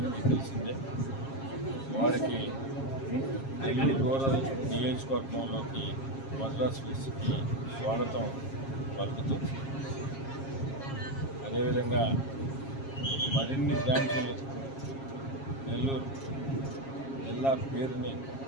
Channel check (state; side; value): late; right; 7.4 ms